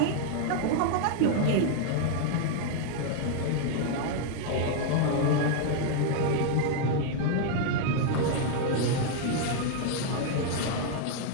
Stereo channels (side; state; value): both; different; correlation 0.00